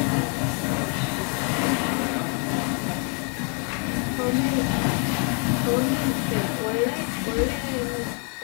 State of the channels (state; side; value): quieter; right; 35.9 dB